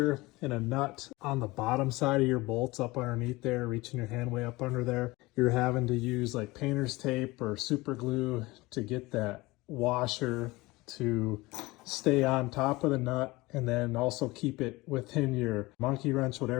and a nut on the bottom side of your bolts up underneath there, reaching your hand way up under there, you're having to use like painter's tape or super glue to get that washer to stay on top of the nut, and then also keep it within your monkey wrench,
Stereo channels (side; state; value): right; quieter; 21.4 dB